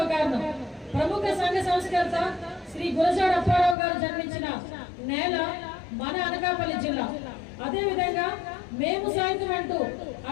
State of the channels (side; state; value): right; drops out; at 3.8 s